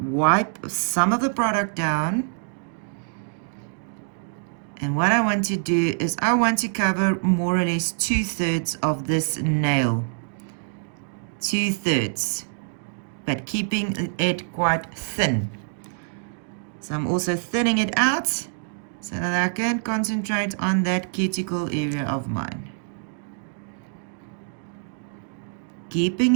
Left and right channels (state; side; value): silent; left; digital silence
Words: some of the product down. And what I want to do is I want to cover more or less 2/3 of this nail. 2/3, but keeping it quite thin. So I'm also thinning it out so that I can concentrate on that cuticle area of mine. Keeping